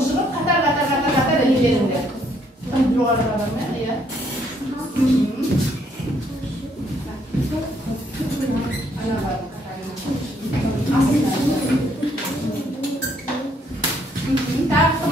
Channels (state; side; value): normal; both; correlation 0.69